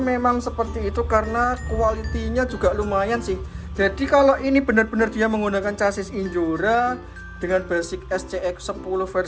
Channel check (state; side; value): identical; both; correlation 1.00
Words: memang seperti itu karena kualitinya juga lumayan sih. Jadi kalau ini benar-benar dia menggunakan chassis Injora dengan basic SCX10